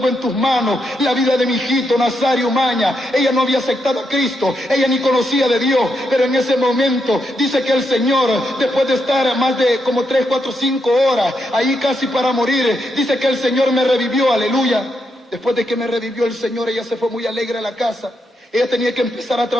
en tus manos la vida de mi hijito Nazario Umaña. Ella no había aceptado a Cristo, ella ni conocía de Dios, pero en ese momento dice que el Señor, después de estar más de como 3, 4, 5 horas ahí casi para morir, dice que el Señor me revivió, aleluya. Después de que me revivió el Señor, ella se fue muy alegre a la casa. Ella tenía que empezar a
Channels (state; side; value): normal; both; correlation 0.82